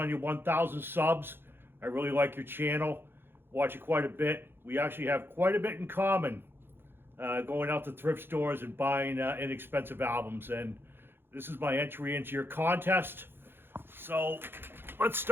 your 1,000 subs. I really like your channel. Watch it quite a bit. We actually have quite a bit in common. Going out to thrift stores and buying inexpensive albums. And this is my entry into your contest. So let's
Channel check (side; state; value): left; late; 0.10 ms